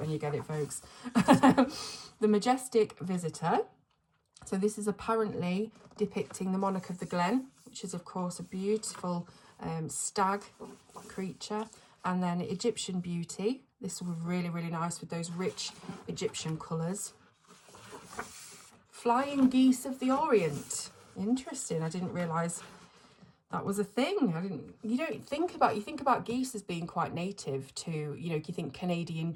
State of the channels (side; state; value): both; identical; correlation 1.00